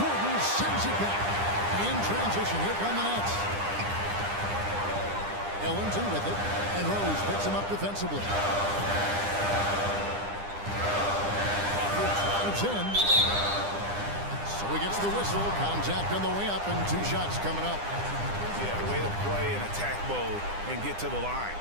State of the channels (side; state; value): left; late; 9.9 ms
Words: sends it back. In transition, here come the Nets. Ellington with it, and Rose picks him up defensively. Crawford drives in. So he gets the whistle. Contact on the way up, and 2 shots coming up. Yeah, way to play in attack mode and get to the line.